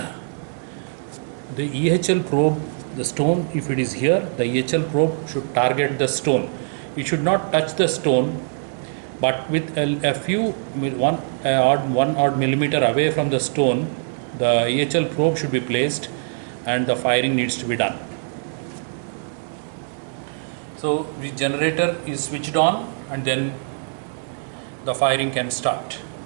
the EHL probe, the stone, if it is here, the EHL probe should target the stone. It should not touch the stone, but with a few one odd millimeter away from the stone, the EHL probe should be placed and the firing needs to be done. So the generator is switched on and then the firing can start.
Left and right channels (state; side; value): silent; left; 62 dB below the other